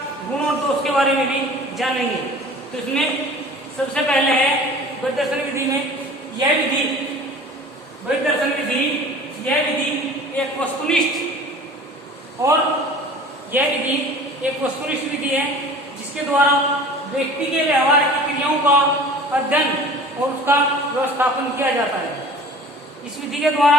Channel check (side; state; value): both; normal; correlation 0.43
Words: गुण और दोष के बारे में भी जानेंगे। तो इसमें सबसे पहले है परिदर्शन विधि में यह विधि एक वस्तुनिष्ठ और यह विधि एक वस्तुनिष्ठ विधि है जिसके द्वारा व्यक्ति के व्यवहार की क्रियाओं का अध्ययन और उसका व्यवस्थापन किया जाता है। इस विधि के